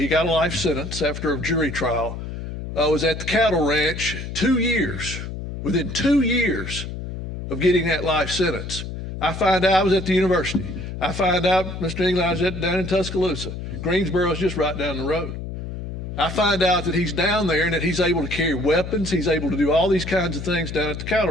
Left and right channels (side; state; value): left; noise; hum, 7 dB below the sound